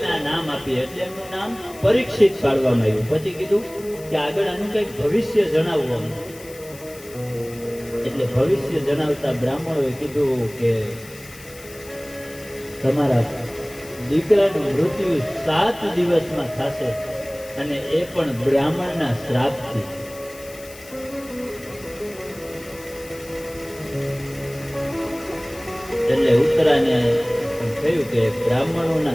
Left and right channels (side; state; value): left; noise; hiss, 19 dB below the sound